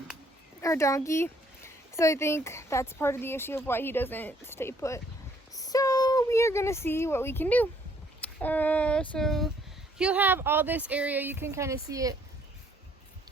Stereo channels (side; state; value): both; normal; correlation 0.64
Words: our donkey. So I think that's part of the issue of why he doesn't stay put. So we are gonna see what we can do. So he'll have all this area. You can kind of see it.